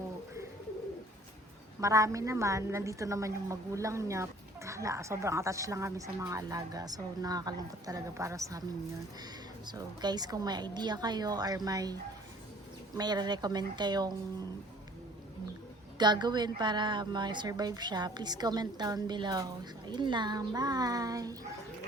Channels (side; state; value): both; normal; correlation 0.53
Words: marami naman, nandito naman yung magulang niya. Hala, sobrang attached lang kami sa mga alaga. So, nakakalungkot talaga para sa amin yun. So, guys, kung may idea kayo or may recommend kayong gagawin para ma-survive siya, please comment down below. So, ayun lang. Bye!